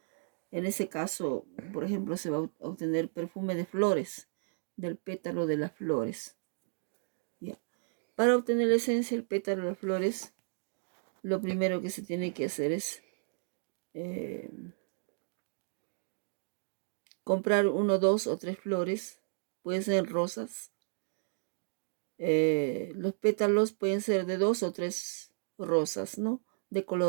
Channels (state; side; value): silent; left; digital silence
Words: En ese caso, por ejemplo, se va a obtener perfume de flores, del pétalo de las flores. ¿Ya? Para obtener la esencia del pétalo de las flores, lo primero que se tiene que hacer es comprar 1, 2 o 3 flores, pueden ser rosas. Los pétalos pueden ser de 2 o 3 rosas, ¿no? De